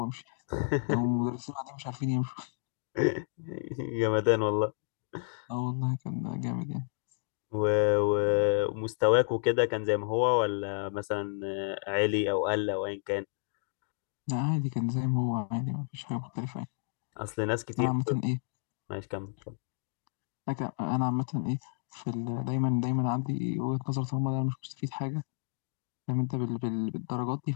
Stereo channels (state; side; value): silent; right; 57 dB below the other